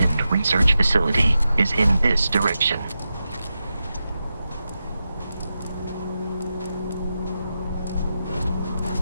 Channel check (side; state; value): both; inverted; correlation -0.90